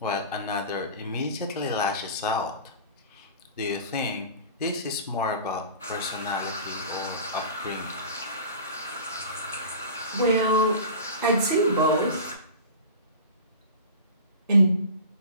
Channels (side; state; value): both; inverted; correlation -0.36